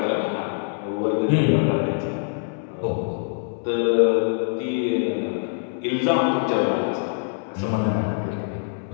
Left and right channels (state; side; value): silent; right; digital silence